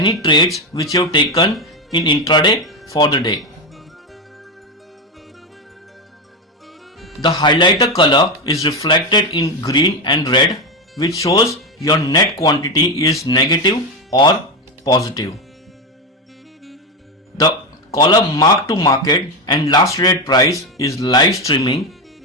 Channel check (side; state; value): both; normal; correlation 0.12